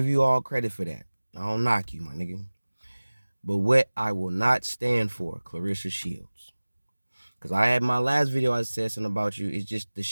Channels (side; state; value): both; inverted; correlation -1.00